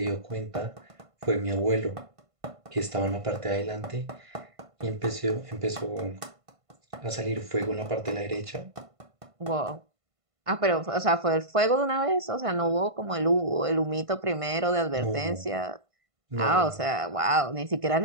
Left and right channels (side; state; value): left; late; 1.5 ms